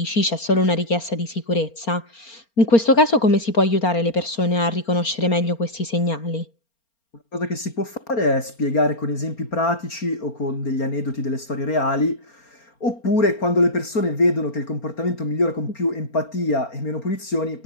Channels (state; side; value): late; right; 4.3 ms